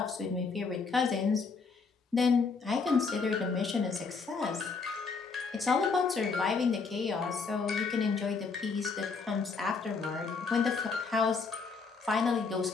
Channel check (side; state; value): right; quieter; 4.8 dB